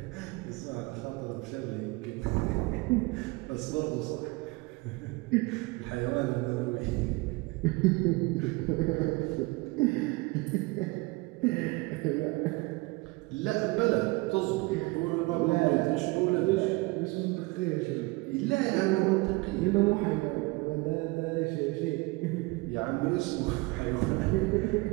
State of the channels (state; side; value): quieter; left; 24.6 dB